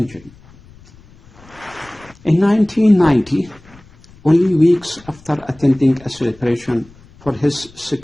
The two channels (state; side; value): noise; left; rumble, 25 dB below the sound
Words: In 1990, only weeks after attending a celebration for his